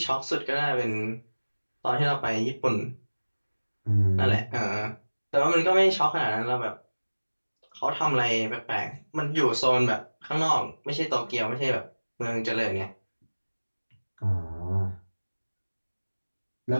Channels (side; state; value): both; inverted; correlation -1.00